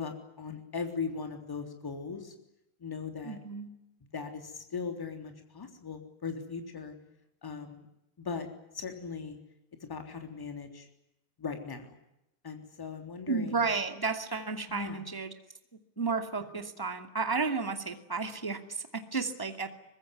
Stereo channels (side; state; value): right; late; 1.1 ms